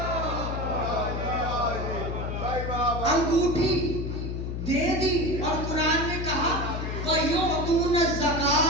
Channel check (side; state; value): left; noise; hum, 4 dB below the sound